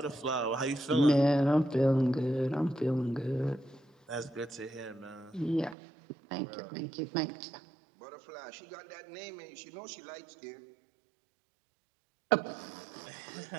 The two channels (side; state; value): left; drops out; at 5.8 s